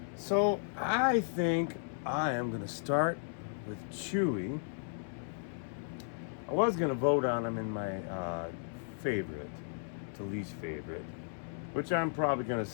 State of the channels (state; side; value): silent; right; 55 dB below the other